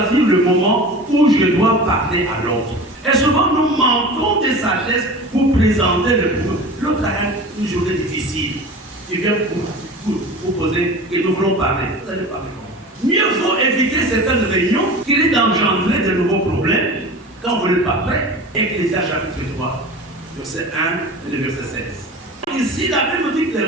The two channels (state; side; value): normal; both; correlation 0.35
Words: le moment où je dois parler à l'autre. Et souvent, nous manquons de sagesse pour présenter le problème. L'autre a une journée difficile. Tu viens pour poser et nous voulons parler. Vous allez parler comment? Mieux vaut éviter certaines réunions qui risquent d'engendrer de nouveaux problèmes quand vous n'êtes pas prêt. Ecclésiaste chapitre 3, verset 1 et le verset 16. Ici, la Bible dit